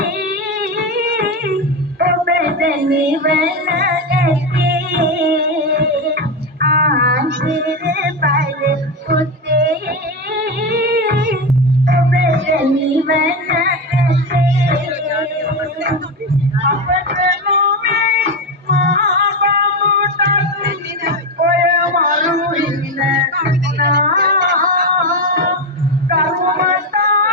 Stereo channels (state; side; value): normal; both; correlation 0.15